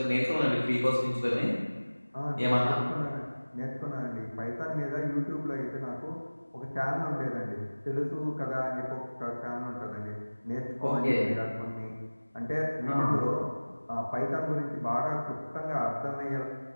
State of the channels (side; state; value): both; inverted; correlation -1.00